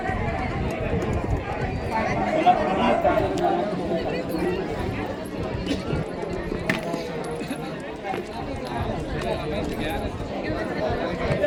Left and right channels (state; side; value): identical; both; correlation 1.00